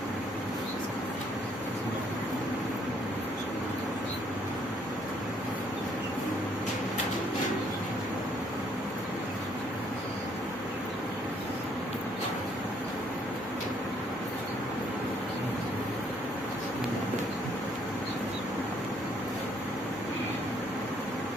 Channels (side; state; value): both; normal; correlation 0.67